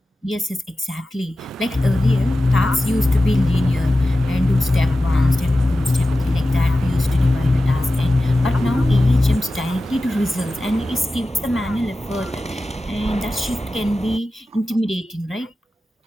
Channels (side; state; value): both; normal; correlation 0.94